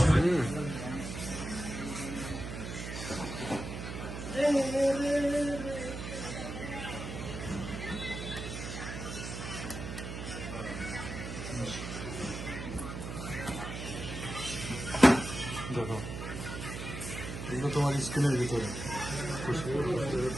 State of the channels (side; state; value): right; noise; hum, 6 dB below the sound